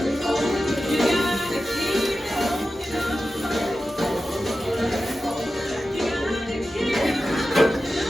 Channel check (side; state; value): both; normal; correlation 0.93